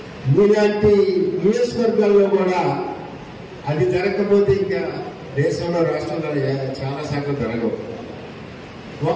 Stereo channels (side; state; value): both; identical; correlation 1.00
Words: మీలాంటి నియోజకవర్గాల్లో కూడా అది జరగకపోతే ఇంకా దేశంలో రాష్ట్రంలో చాలా శాఖలు జరగవు.